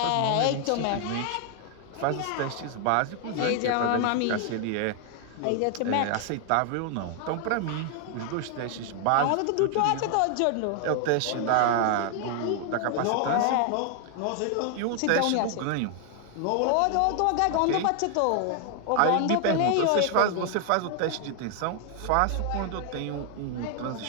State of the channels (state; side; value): different; both; correlation 0.00